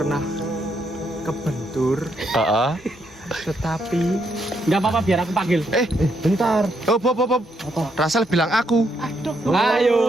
kebentur, tetapi Nggak apa-apa, biar aku panggil. Bentar. Oh, Bob. Rasel bilang aku.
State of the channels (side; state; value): both; normal; correlation 0.76